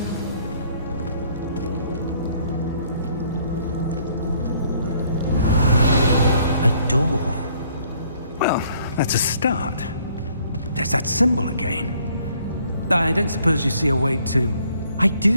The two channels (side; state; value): both; inverted; correlation -0.63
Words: A door. Well, that's a start. There's that symbol again. I don't suppose you see a way to... I